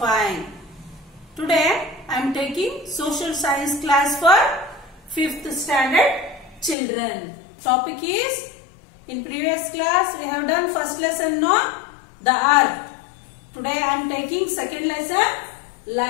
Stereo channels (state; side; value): drops out; right; at 6.8 s